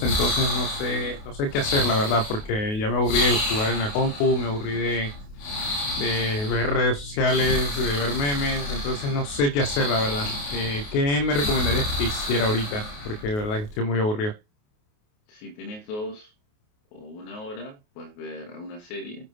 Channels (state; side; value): late; right; 28 ms